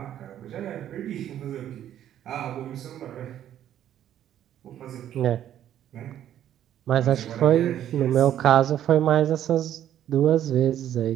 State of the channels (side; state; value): left; quieter; 11.1 dB